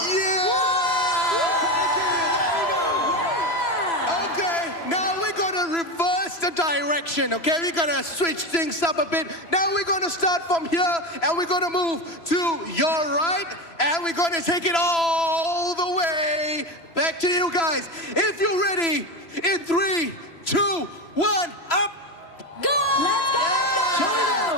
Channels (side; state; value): right; late; 3.0 ms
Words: Okay, now we're gonna reverse the direction, okay? We're gonna switch things up a bit. Now we're gonna start from here, and we're gonna move to your right, and we're gonna take it all the way back to you guys. If you're ready, in 3, 2, 1, up! Go! Let's go, let's go!